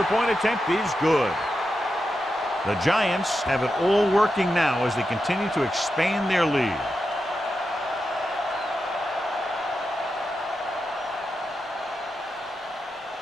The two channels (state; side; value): normal; both; correlation 0.88